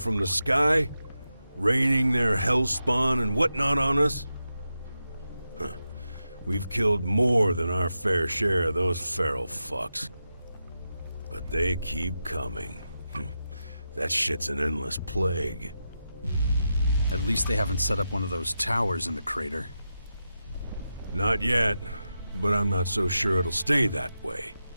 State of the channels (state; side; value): inverted; both; correlation -0.89